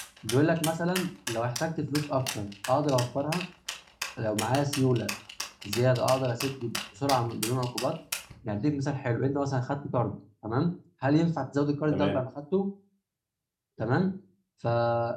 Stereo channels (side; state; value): both; identical; correlation 1.00